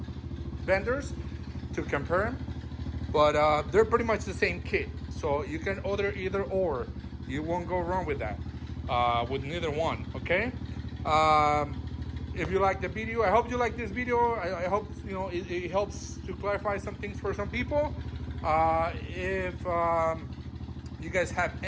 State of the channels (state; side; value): identical; both; correlation 1.00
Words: vendors to compare them, but they're pretty much the same kit. So you can order either or. You won't go wrong with that, with neither one, okay? If you like the video, I hope you like this video. I hope it helps to clarify some things for some people. If you guys have